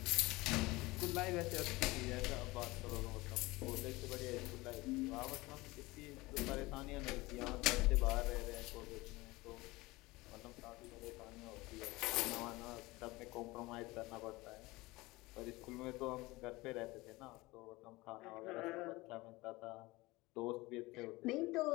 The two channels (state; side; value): quieter; right; 21.3 dB